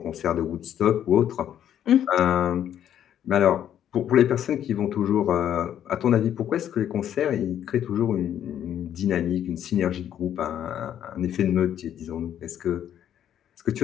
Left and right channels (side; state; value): right; quieter; 10.2 dB